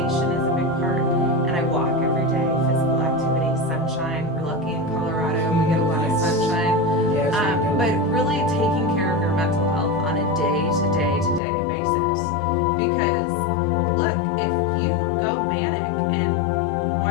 is a big part. And I walk every day, physical activity, sunshine. We're lucky in Colorado. We get a lot of sunshine. But really taking care of your mental health on a day-to-day basis. Because, look, if you go manic and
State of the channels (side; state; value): right; drops out; at 11.4 s